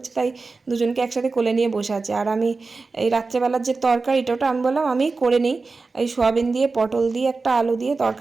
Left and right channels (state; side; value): quieter; left; 4.0 dB